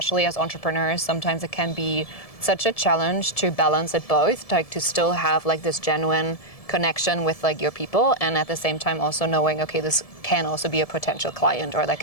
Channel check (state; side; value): late; right; 1.7 ms